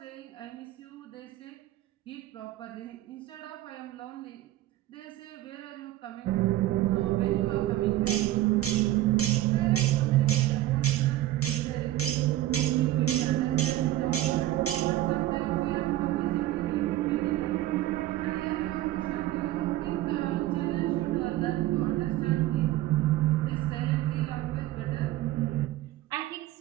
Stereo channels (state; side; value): quieter; left; 15.0 dB